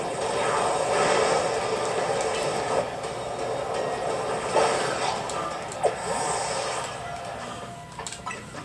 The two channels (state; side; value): identical; both; correlation 1.00